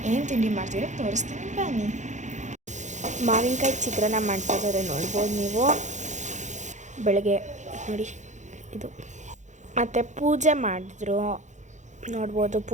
ಏನು ತಿಂಡಿ ಮಾಡ್ತೀರ ತೋರಿಸ್ತೀನಿ ಬನ್ನಿ. ಮಾವಿನಕಾಯಿ ಚಿತ್ರಾನ್ನ ಮಾಡ್ತಾಯಿದ್ದಾರೆ ನೋಡ್ಬೋದು ನೀವು. ಬೆಳಗ್ಗೆ ನೋಡಿ ಇದು. ಮತ್ತು ಪೂಜೆ ಮಾಡಿದ್ರು ನೋಡ್ಬೋದು.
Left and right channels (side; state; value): left; late; 0.35 ms